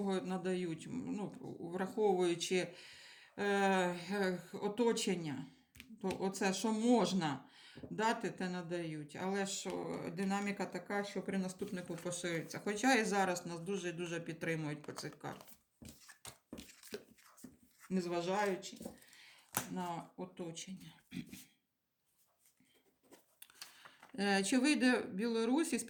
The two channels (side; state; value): both; identical; correlation 1.00